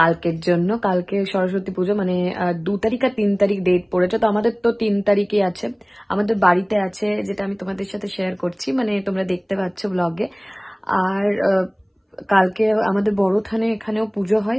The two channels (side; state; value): both; identical; correlation 1.00